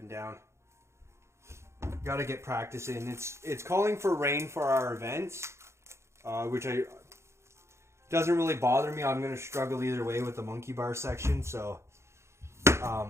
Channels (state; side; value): late; left; 0.13 ms